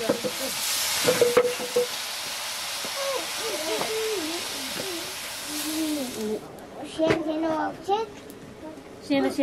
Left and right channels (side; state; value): both; identical; correlation 1.00